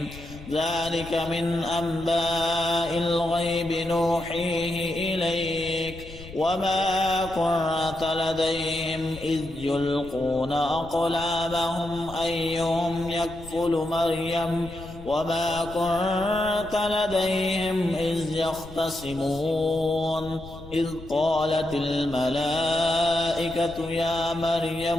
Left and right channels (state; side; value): noise; left; rumble, 16 dB below the sound